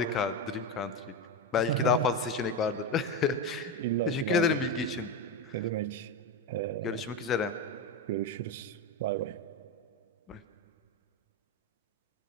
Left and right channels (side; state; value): both; normal; correlation 0.15